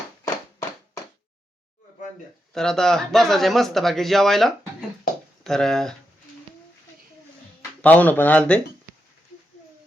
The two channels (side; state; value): both; normal; correlation 0.85